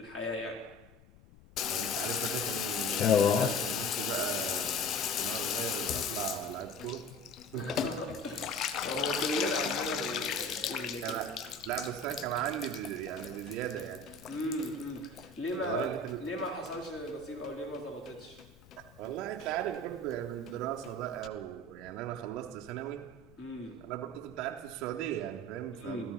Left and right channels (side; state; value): left; noise; rumble, 24 dB below the sound